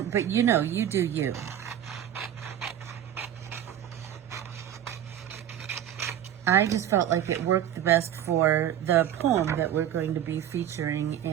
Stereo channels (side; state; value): left; quieter; 10.6 dB